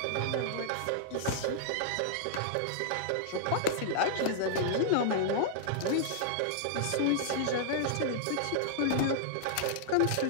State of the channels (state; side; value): different; both; correlation -0.01